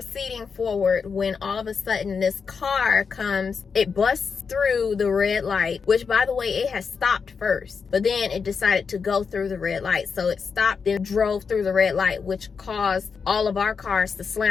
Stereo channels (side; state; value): right; quieter; 5.7 dB